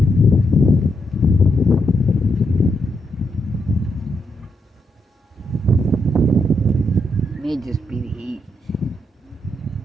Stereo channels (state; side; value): normal; both; correlation 0.80